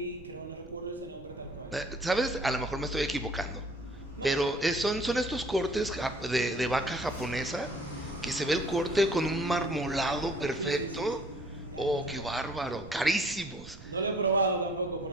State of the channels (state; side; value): noise; right; rumble, 18 dB below the sound